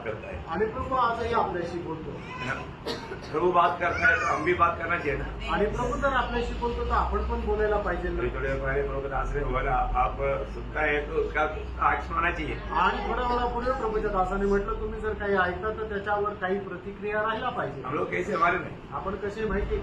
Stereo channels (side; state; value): both; identical; correlation 1.00